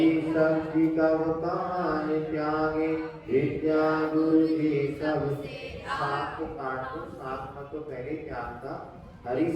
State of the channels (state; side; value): identical; both; correlation 1.00